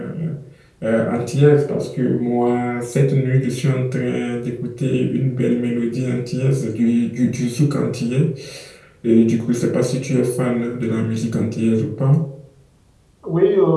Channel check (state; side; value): identical; both; correlation 1.00